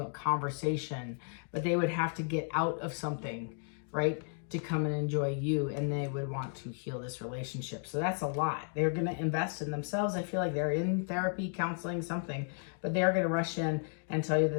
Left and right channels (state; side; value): silent; right; 55 dB below the other